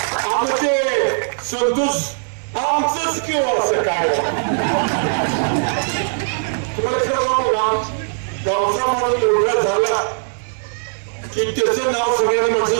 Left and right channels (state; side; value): silent; left; digital silence